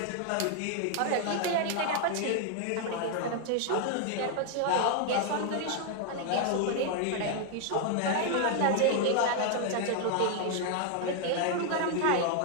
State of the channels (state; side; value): different; both; correlation 0.00